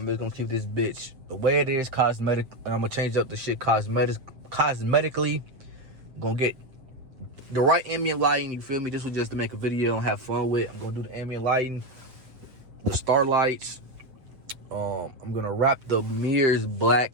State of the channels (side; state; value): left; late; 7.4 ms